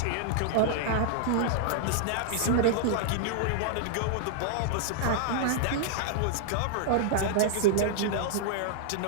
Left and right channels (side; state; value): both; different; correlation -0.01